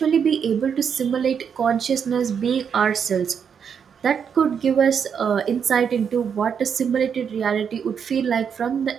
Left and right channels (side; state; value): left; quieter; 7.2 dB